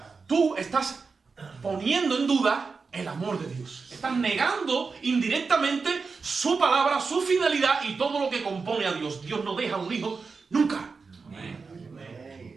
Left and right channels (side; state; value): left; quieter; 4.7 dB